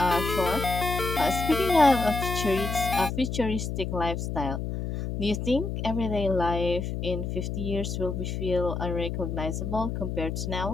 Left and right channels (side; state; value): left; noise; hum, 3 dB below the sound